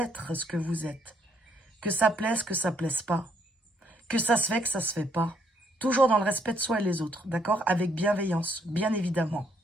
ce que vous êtes. Que ça plaise pas. Que ça se fait, que ça se fait pas. Toujours dans le respect de soi et les autres, d'accord? Avec bienveillance, bien évidemment.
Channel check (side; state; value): both; normal; correlation 0.70